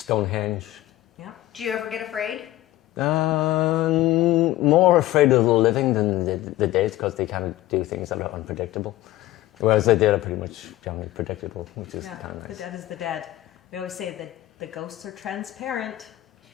Yeah. Do you ever get afraid? More afraid of the living than the dead, because they kind of do things that are unpredictable. Whereas the dead are pretty much generally predictable, which is kind of nice. The dead is the dead. We always say that the ghosts are transparent.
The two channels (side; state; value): right; quieter; 15.9 dB